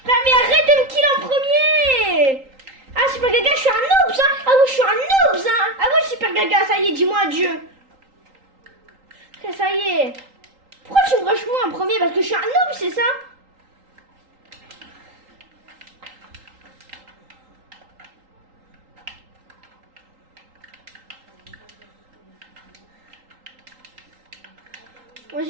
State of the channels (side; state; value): left; late; 3.8 ms